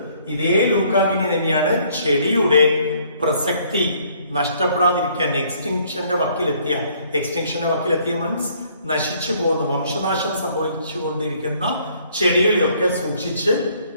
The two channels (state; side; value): inverted; both; correlation -0.63